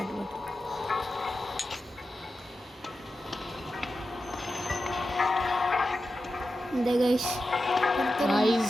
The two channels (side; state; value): both; normal; correlation 0.91